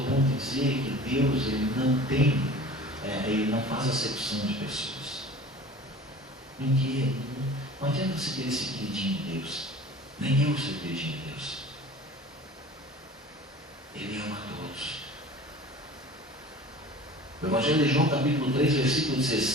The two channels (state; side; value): normal; both; correlation 0.42